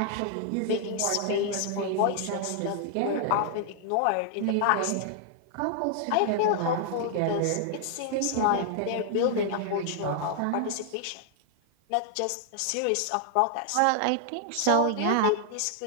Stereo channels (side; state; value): both; different; correlation 0.00